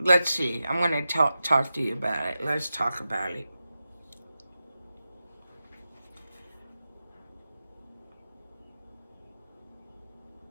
see. I'm going to talk to you about it. Let's talk about it.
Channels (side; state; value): both; inverted; correlation -0.92